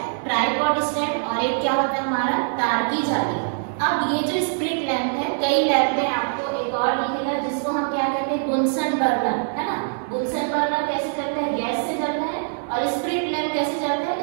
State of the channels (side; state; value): left; silent; digital silence